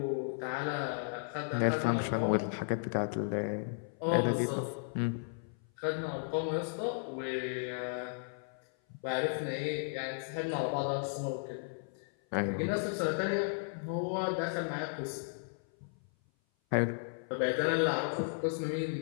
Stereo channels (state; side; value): silent; right; 55 dB below the other